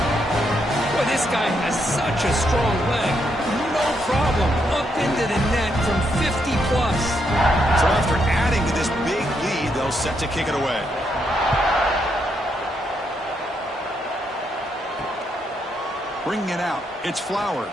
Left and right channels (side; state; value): both; normal; correlation 0.78